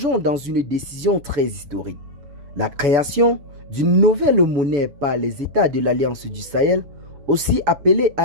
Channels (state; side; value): late; left; 7.0 ms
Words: dans une décision très historique. La création d'une nouvelle monnaie par les États de l'Alliance du Sahel, aussi appelée